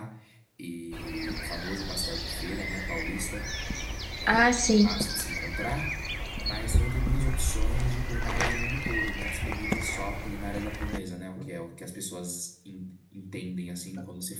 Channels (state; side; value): identical; both; correlation 1.00